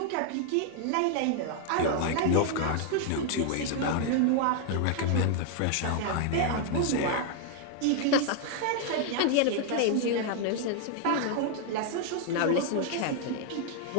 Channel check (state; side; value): different; both; correlation 0.00